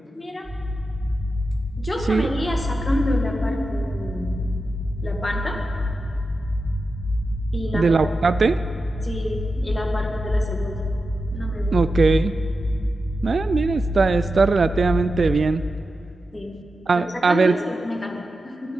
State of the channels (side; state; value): both; normal; correlation 0.91